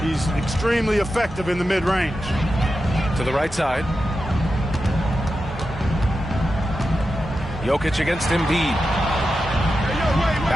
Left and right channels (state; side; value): normal; both; correlation 0.90